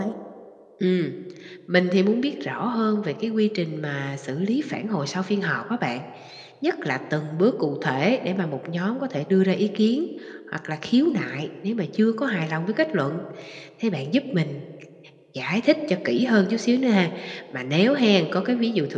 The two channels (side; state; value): both; identical; correlation 1.00